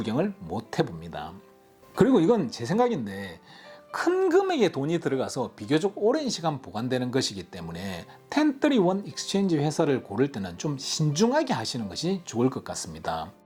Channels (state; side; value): identical; both; correlation 1.00